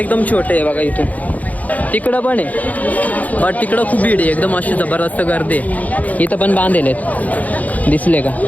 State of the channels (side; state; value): right; late; 0.076 ms